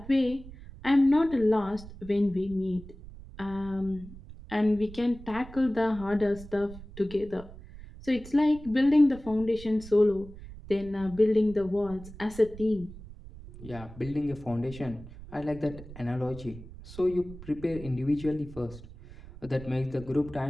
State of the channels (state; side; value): noise; right; rumble, 16 dB below the sound